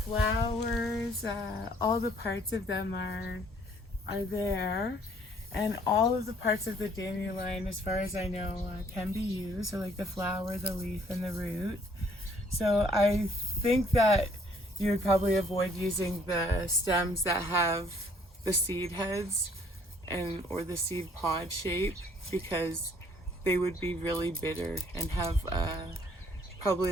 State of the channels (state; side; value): normal; both; correlation 0.61